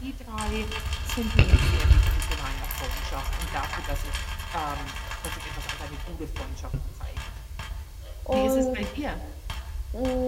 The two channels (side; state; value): both; identical; correlation 1.00